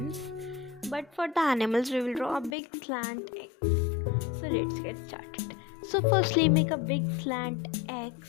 but for the animals we will draw a big slant X. So let's get started. So firstly make a big slant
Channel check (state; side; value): drops out; right; at 2.6 s